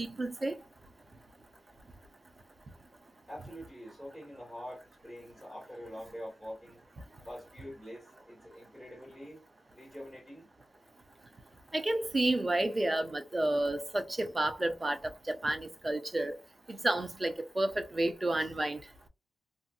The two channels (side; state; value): both; normal; correlation 0.96